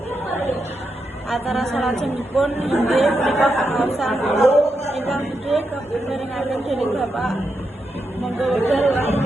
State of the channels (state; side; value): normal; both; correlation 0.85